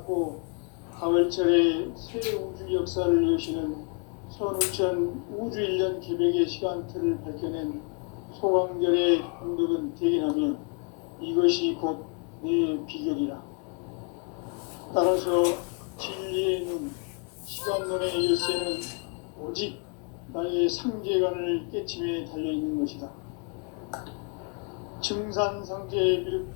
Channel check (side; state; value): right; quieter; 36.8 dB